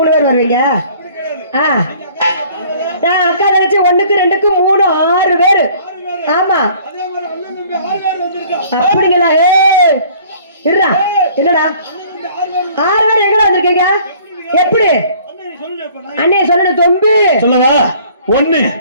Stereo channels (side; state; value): both; inverted; correlation -0.54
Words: பேர் வருவீங்க? நான் அக்கா தங்கச்சி 1க்கு 2க்கு 3 6 பேரு. ஆமா, அப்படிங்களா? இருடா, என்னடா 6 பேர் எங்கடா வந்திருக்கீங்க? எப்படி அண்ணே சொல்லணும்? தொம்பு சொல்லவா? 1